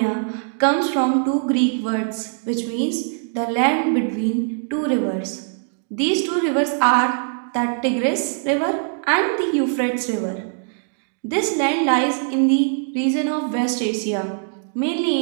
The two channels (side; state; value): left; silent; digital silence